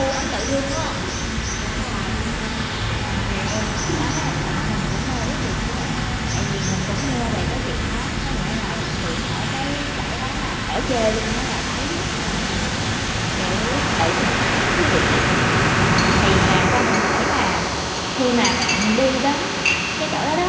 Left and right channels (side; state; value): both; identical; correlation 1.00